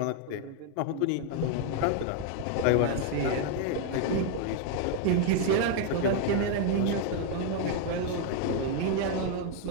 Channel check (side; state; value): both; different; correlation 0.00